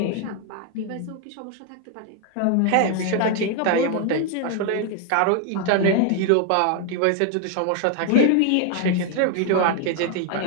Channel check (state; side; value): different; both; correlation 0.01